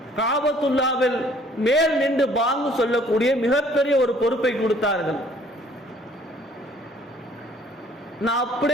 காபத்துல்லாவில் மேல் நின்று பாங்கு சொல்லக்கூடிய மிகப்பெரிய ஒரு பொறுப்பை கொடுத்தார்கள். நான்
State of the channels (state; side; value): normal; both; correlation 0.58